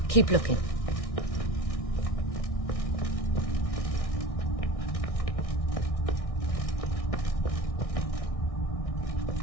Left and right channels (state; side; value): late; right; 1.6 ms